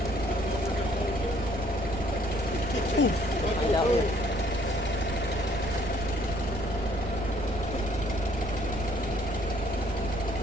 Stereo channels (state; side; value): noise; right; rumble, 8 dB below the sound